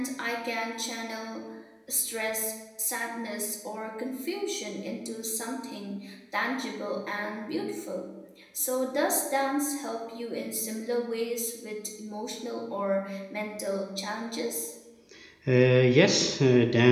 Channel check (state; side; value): identical; both; correlation 1.00